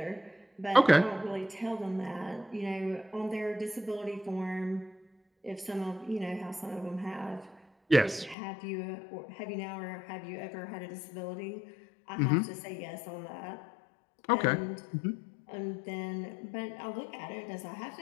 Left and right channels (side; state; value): right; drops out; at 8.3 s